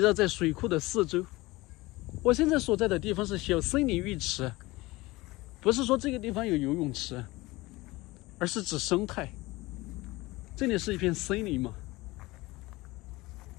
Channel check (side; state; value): right; quieter; 20.8 dB